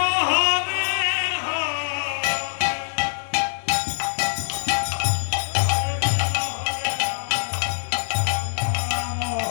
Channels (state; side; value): silent; right; digital silence